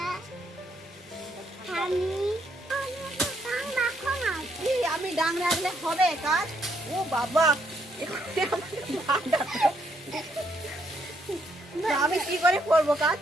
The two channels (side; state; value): both; normal; correlation 0.73